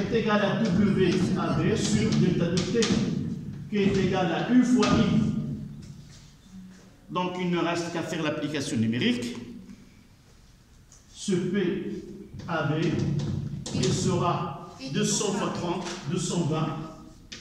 égale à WAB sur delta de T, qui est égal à U fois I. Donc il ne reste qu'à faire l'application numérique. Ce PAB, il sera 200 fois 30, 220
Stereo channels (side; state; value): both; identical; correlation 1.00